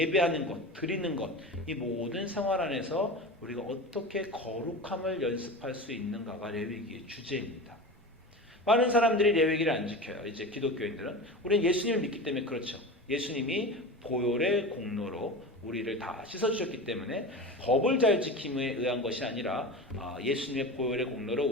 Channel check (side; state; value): both; normal; correlation 0.29